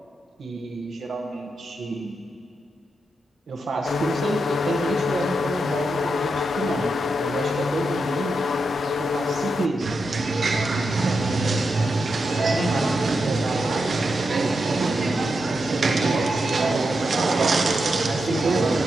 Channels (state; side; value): normal; both; correlation 0.86